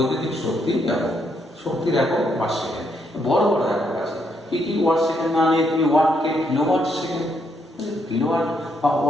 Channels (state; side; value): normal; both; correlation 0.75